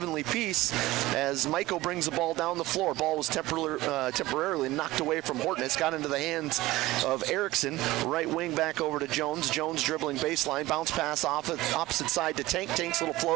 Peace as Maiko brings the ball down the floor. Ball was temporarily knocked away from Hortness, got into the hands of Erickson. Right wing back over to Jones. Jones dribbling baseline, bounce pass off opposite side to Tank. Tank's little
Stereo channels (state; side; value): quieter; left; 18.1 dB